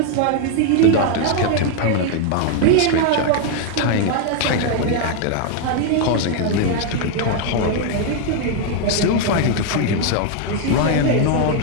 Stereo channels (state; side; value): different; both; correlation 0.01